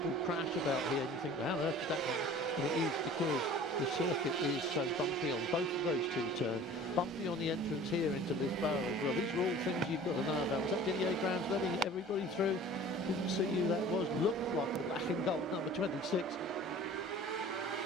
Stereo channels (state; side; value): normal; both; correlation 0.44